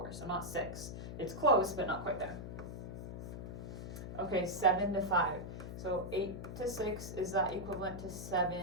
so not 6. It's close, but not quite there. Okay, 7 to 5. So 8 to 6, is that equivalent to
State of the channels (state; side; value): noise; left; hum, 8 dB below the sound